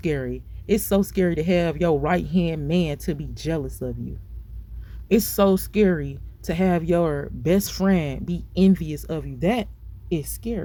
It's so scary to have your right hand man to be jealous of you. It's so scary to have your best friend be envious of you. That is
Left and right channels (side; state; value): both; identical; correlation 1.00